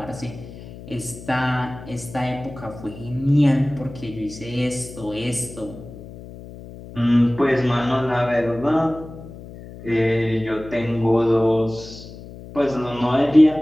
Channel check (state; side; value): noise; left; hum, 15 dB below the sound